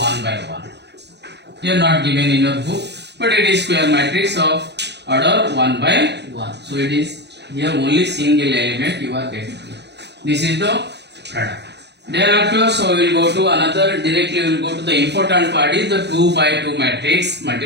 by 1. Here not given in your book, but it is square matrix of order 1 by 1. So it is here only single element you are getting. This is the product. Thereafter, so we will go to another, directly we will go to the important part is the 2 by 2 matrix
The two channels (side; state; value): left; late; 0.50 ms